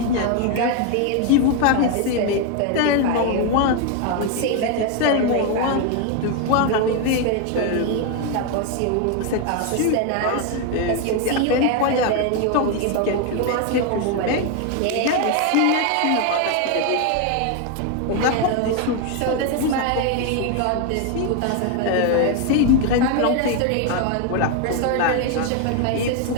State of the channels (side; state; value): both; different; correlation 0.01